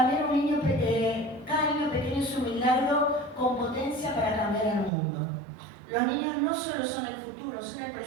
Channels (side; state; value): left; drops out; at 4.9 s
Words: un niño, cada niño pequeño es un milagro con potencia para cambiar el mundo. Los niños no solo son el futuro, son el